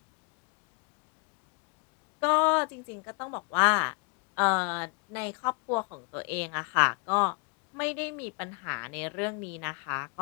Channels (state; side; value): quieter; right; 34.8 dB